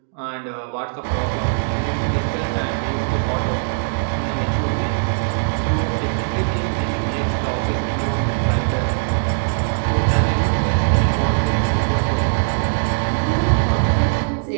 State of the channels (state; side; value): silent; left; digital silence